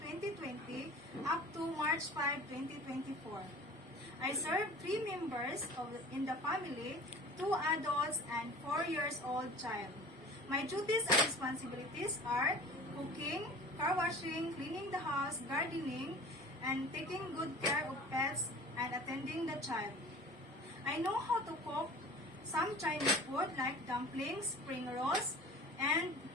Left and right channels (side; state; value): both; normal; correlation 0.42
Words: up to March 5, 2024. I served 3 members in the family, 2 adults and 4 years old child. My duties and responsibilities are cooking, car washing, cleaning the house, gardening, and taking good care of pets and attending the child. I know how to cook some Chinese food like dumplings, spring rolls, and